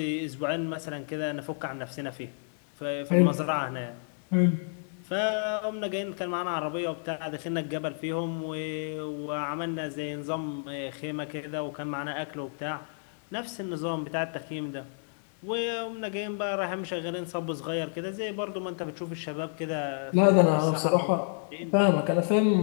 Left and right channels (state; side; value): silent; right; 58 dB below the other